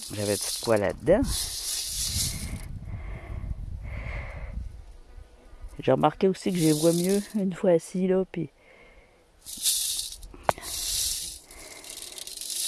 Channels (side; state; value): both; identical; correlation 1.00